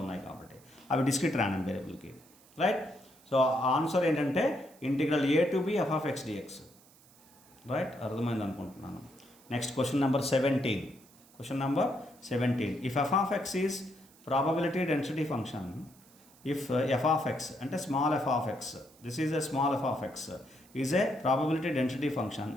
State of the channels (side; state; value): right; noise; hiss, 27 dB below the sound